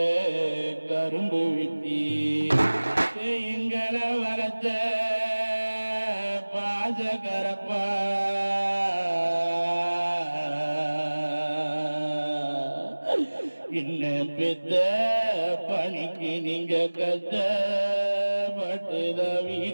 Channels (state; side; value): inverted; both; correlation -1.00